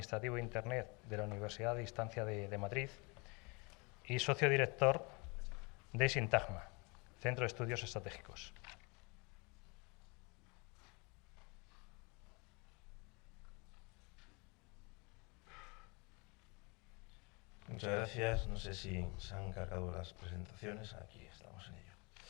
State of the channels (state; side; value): quieter; right; 29.2 dB